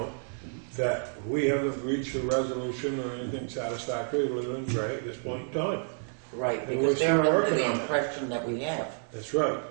that we haven't reached a resolution or anything satisfactory with Leland and Gray at this point in time. Right, And we're because they're still under working the on it. impression that we have. That's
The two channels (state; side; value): silent; left; 58 dB below the other